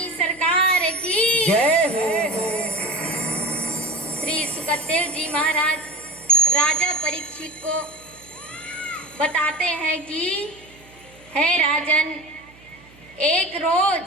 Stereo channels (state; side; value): noise; right; hum, 25 dB below the sound